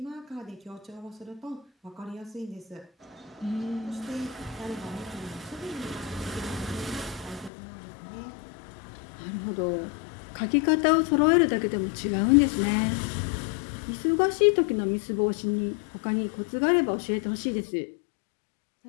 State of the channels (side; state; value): right; drops out; at 7.5 s